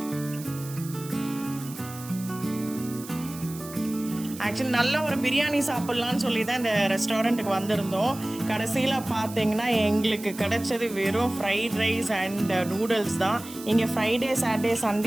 ஆக்சுவலி நல்ல ஒரு பிரியாணி சாப்பிட்லான்னு சொல்லி தான் இந்த ரெஸ்டாரண்ட்டுக்கு வந்திருந்தோம். கடைசியில் பார்த்தீங்கன்னா எங்களுக்கு கிடைச்சது வெறும் ஃப்ரைட் ரைஸ் அண்ட் நூடுல்ஸ் தான். இங்கே ஃப்ரைடே, சாட்டர்டே,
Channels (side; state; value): right; noise; hiss, 15 dB below the sound